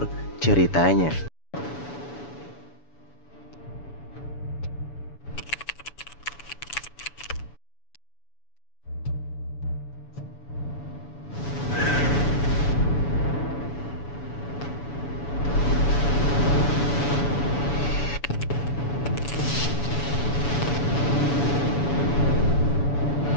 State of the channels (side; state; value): right; late; 7.0 ms